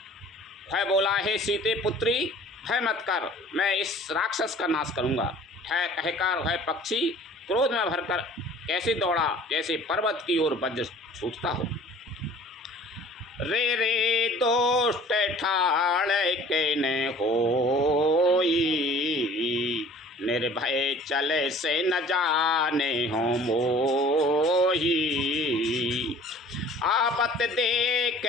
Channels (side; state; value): both; normal; correlation 0.49